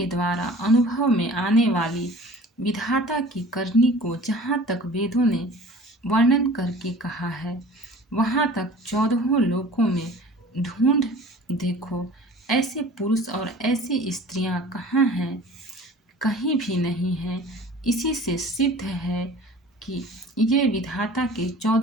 द्वारा अनुभव में आने वाली विधाता की करनी को जहाँ तक वेदों ने वर्णन करके कहा है, वहाँ तक 14 लोकों में ढूंढ देखो, ऐसे पुरुष और ऐसी स्त्रियां कहाँ हैं? कहीं भी नहीं हैं। इसी से सिद्ध है कि ये विधाता के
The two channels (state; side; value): normal; both; correlation 0.44